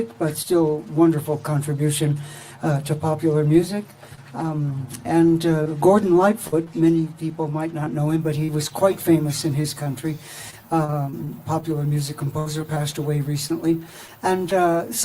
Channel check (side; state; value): both; identical; correlation 1.00